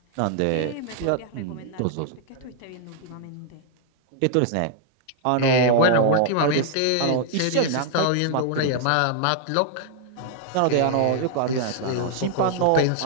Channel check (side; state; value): both; different; correlation 0.00